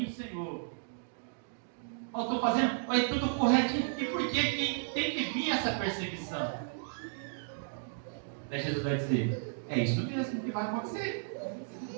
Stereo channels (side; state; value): left; silent; digital silence